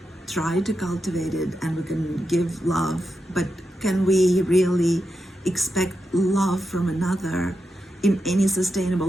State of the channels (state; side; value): normal; both; correlation 0.87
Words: try to cultivate it and we can give love, but can we really expect love from another in any sustainable